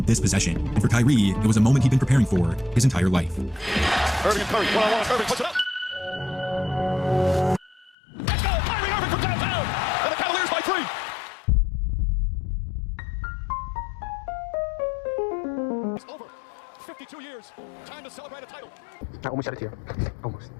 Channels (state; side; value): drops out; right; at 8.0 s